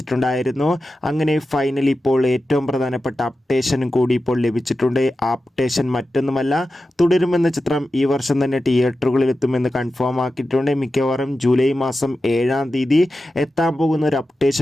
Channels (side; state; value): both; normal; correlation 0.92